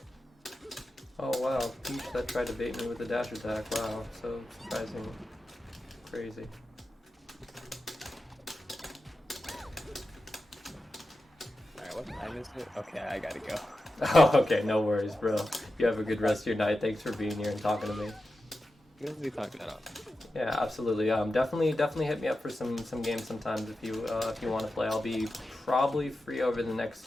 Oh wow, Peach that tried to bait me with the dash attack. Wow, so surprising. Crazy. Alright, what time is it? Okay, I gotta go. Oh, okay, no worries, bro. You have a good rest of your night. Thanks for being here and talking to me. We'll be talking about it. Yeah, absolutely. Definitely hit me up for some games sometimes if you want to play. I'll be probably free over the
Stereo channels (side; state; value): both; normal; correlation 0.91